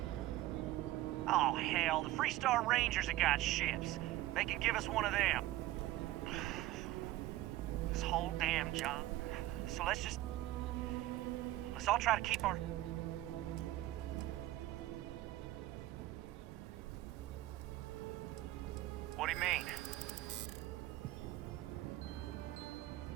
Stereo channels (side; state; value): left; quieter; 15.9 dB